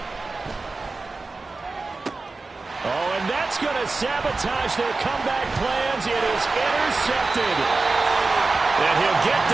Oh, and that's going to sabotage their comeback plans. It is intercepted. And he'll get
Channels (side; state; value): left; quieter; 3.7 dB